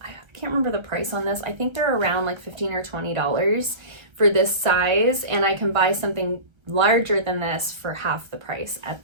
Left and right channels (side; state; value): left; late; 1.3 ms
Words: I can't remember the price on this. I think they're around like $15 or $20 for this size. And I can buy something larger than this for half the price at